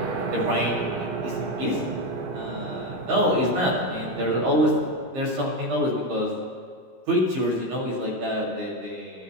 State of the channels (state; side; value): late; left; 17 ms